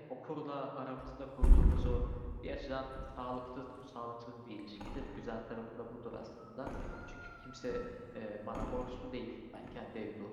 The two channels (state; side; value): identical; both; correlation 1.00